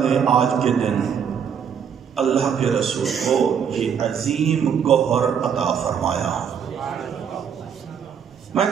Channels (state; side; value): quieter; left; 7.6 dB